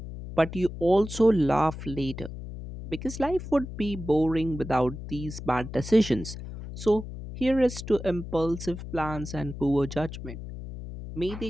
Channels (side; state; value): left; noise; hum, 10 dB below the sound